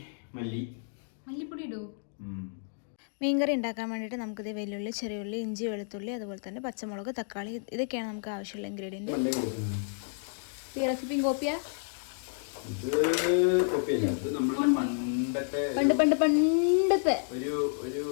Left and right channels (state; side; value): silent; right; digital silence